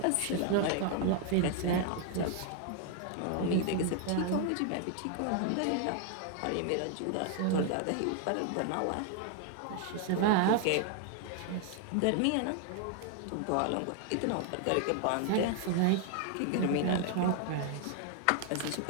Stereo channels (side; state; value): both; different; correlation 0.00